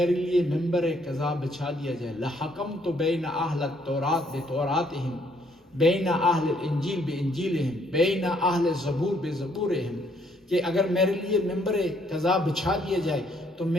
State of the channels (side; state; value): both; normal; correlation 0.68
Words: لیے ممبر قضا بچھا دیا جائے، لحکمت بین اہل التورات بتوراتہم بین اہل الانجیل بانجیلہم بین اہل الزبور بزبورہم، کہ اگر میرے لیے ممبر قضا بچھا دیا جائے تو